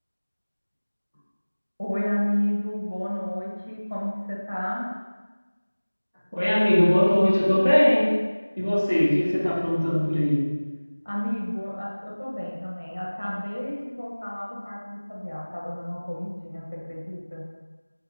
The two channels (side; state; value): both; inverted; correlation -1.00